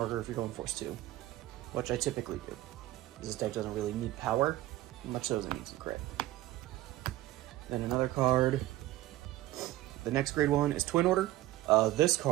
if you're going force 2, which I typically do. This deck doesn't really need power, much so as it needs some crit. Then another card. The next grade 1 is Twin Order. This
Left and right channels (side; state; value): left; quieter; 15.9 dB